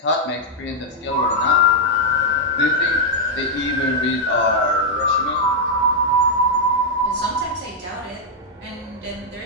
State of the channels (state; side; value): normal; both; correlation -0.03